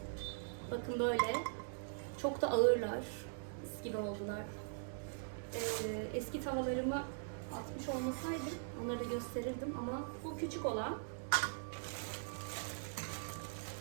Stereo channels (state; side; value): silent; left; digital silence